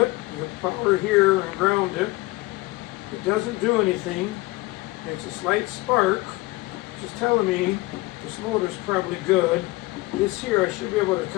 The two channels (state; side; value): quieter; right; 20.9 dB